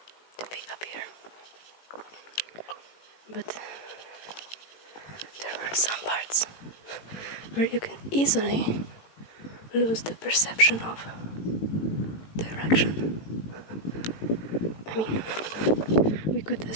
be up here. But there are some parts where you can easily lose the perception of direction. I mean, we could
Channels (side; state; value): right; late; 18 ms